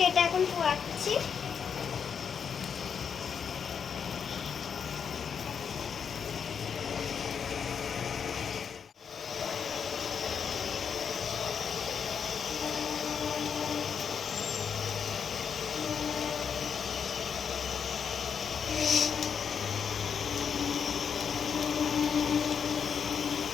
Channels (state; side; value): quieter; right; 7.0 dB